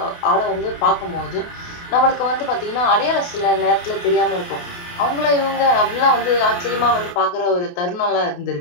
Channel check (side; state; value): right; late; 28 ms